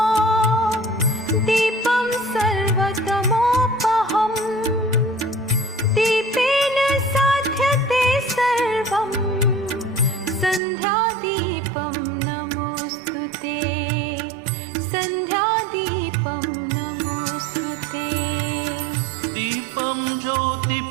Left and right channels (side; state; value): left; drops out; at 10.6 s